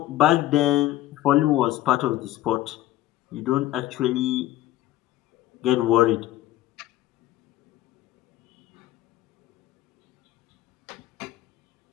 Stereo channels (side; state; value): right; quieter; 14.7 dB